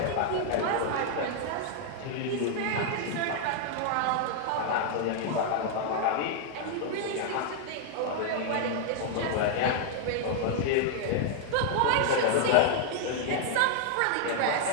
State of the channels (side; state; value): both; different; correlation 0.00